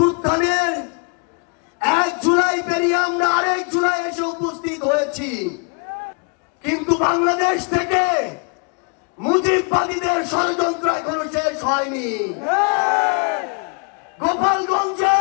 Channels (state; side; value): quieter; right; 36.4 dB